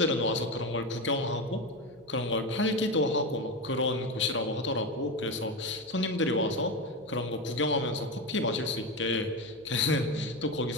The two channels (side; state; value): both; normal; correlation 0.17